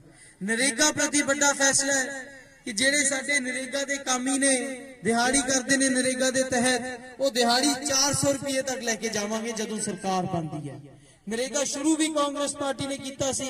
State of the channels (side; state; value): both; identical; correlation 1.00